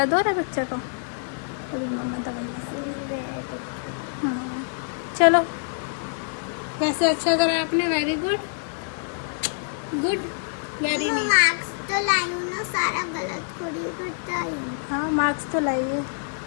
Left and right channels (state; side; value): silent; right; 61 dB below the other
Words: हो रहा है बच्चा को। अभी मम्मा दवाई। हाँ चलो, वैसे अच्छा करा आपने, very good good very nice. Marks तो लाई हूँ ना, सारा गलत थोड़ी करता हूँ। हाँ मार्क्स तो लाइए,